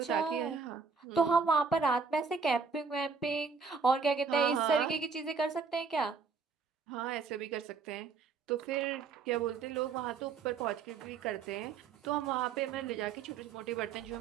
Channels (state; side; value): quieter; left; 5.2 dB